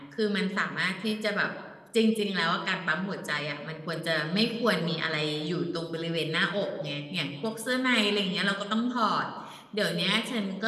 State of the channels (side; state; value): both; identical; correlation 1.00